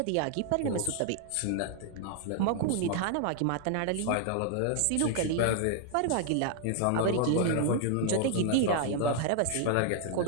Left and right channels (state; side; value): different; both; correlation 0.00